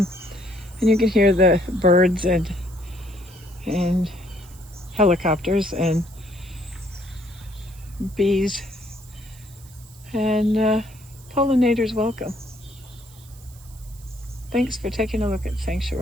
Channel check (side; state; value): right; noise; hiss, 23 dB below the sound